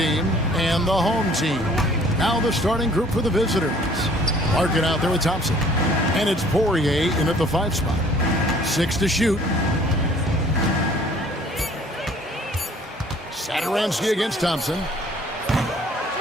and the home team. Now the starting group for the visitors. Larkin out there with Thompson. And it's Poirier in at the 5 spot. 6 to shoot. Satoransky against Thompson.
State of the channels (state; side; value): normal; both; correlation 0.55